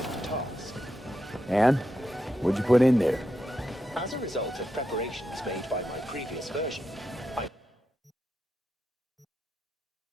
task. And? What'd you put in there? As a result of preparations made by my previous version, I...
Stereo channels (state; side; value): normal; both; correlation 0.86